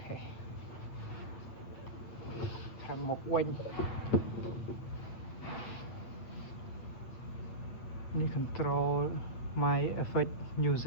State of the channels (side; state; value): right; late; 8.4 ms